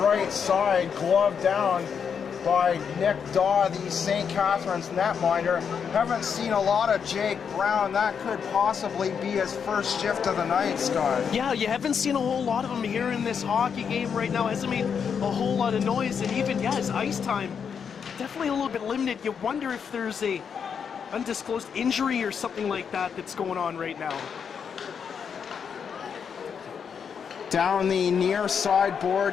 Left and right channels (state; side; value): quieter; right; 6.9 dB